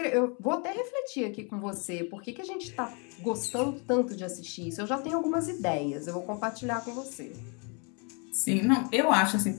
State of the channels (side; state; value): right; quieter; 34.8 dB